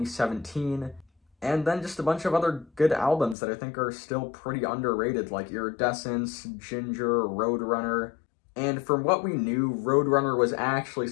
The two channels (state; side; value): drops out; right; at 3.4 s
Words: and then just a bunch of other good albums that I think are still pretty underrated, like Iridescence, Ginger, Roadrunner. And from what we knew, Roadrunner was actually